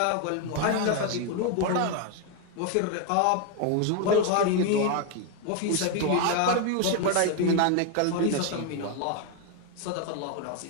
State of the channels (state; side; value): different; both; correlation 0.01